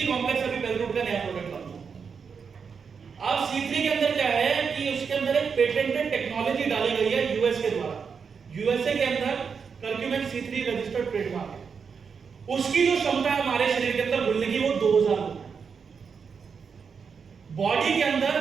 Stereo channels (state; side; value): quieter; left; 6.0 dB